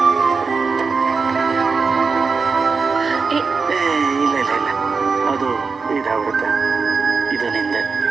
ಇಲ್ಲ ಇಲ್ಲ ಇಲ್ಲ, ಅದು ಇದಾಗ್ಬಿಡುತ್ತೆ. ಇದು ನಿಂದೆ.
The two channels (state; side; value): quieter; left; 4.8 dB